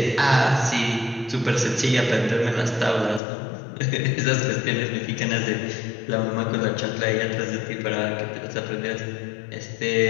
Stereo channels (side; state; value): right; drops out; at 3.2 s